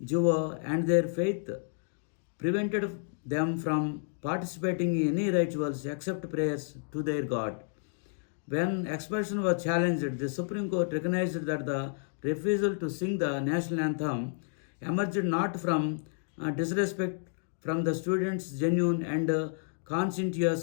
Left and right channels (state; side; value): silent; right; digital silence